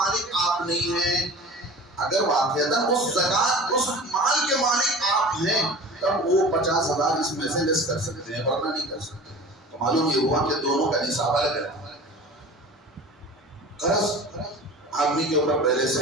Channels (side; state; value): both; normal; correlation 0.39